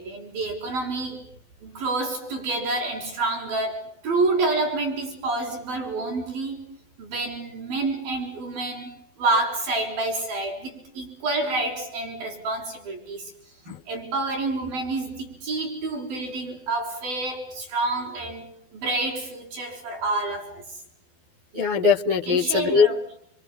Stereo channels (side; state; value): left; late; 12 ms